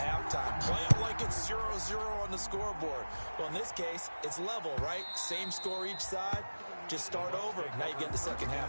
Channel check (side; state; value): both; inverted; correlation -1.00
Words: play it like it's 0-0 on the scoreboard. Well, in this case, it's level, right? Same score each side. Just start over. Now you get the second